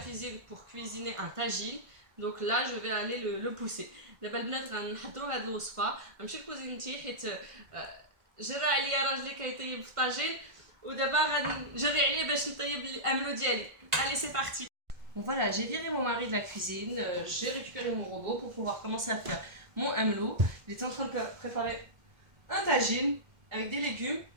cuisine pour cuisiner un tagine. Donc là je vais aller le pousser. دابا البنات غنحضروا هاد الوصفه، غنمشي لكوزينتي حيت جرى عليا راجلي كيطيب في طاجين، ودابا غنجري عليه باش نطيب الاملو ديالي. Allez, c'est parti. Bon voilà, j'ai viré mon mari de la cuisine, j'ai récupéré mon robot pour pouvoir commencer à faire mon hamlo. Il était en train de préparer un tagine avec des légumes.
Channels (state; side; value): late; left; 1.5 ms